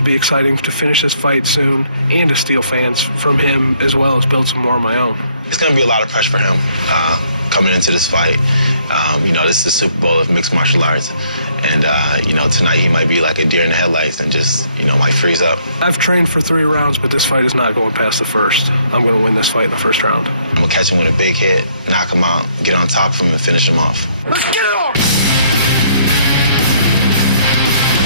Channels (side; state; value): both; inverted; correlation -0.67